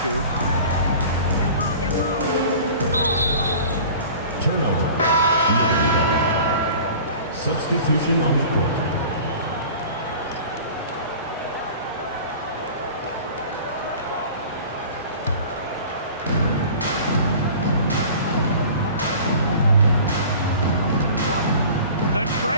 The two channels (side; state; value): both; inverted; correlation -0.42